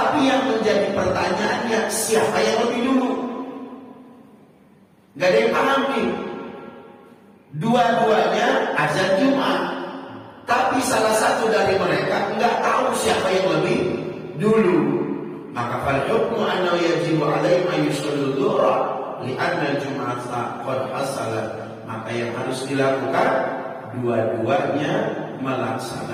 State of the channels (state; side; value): identical; both; correlation 1.00